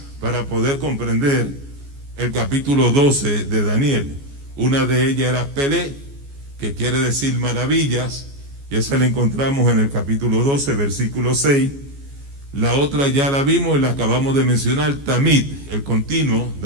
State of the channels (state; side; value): late; left; 14 ms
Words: para poder comprender el capítulo 12 de Daniel. Una de ellas era Pelé, que quiere decir maravillas, y esa la encontramos en el capítulo 12, versículo 6. La otra ya la vimos y la acabamos de mencionar, Tamid, el continuo,